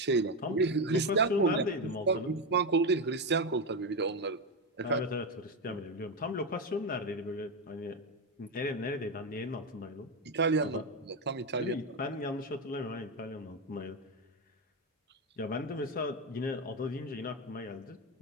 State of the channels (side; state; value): both; normal; correlation 0.11